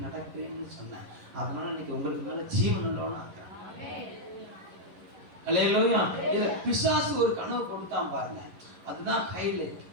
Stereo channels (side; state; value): left; late; 11 ms